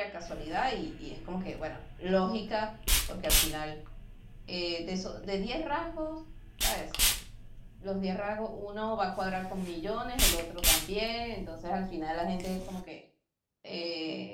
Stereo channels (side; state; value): both; identical; correlation 1.00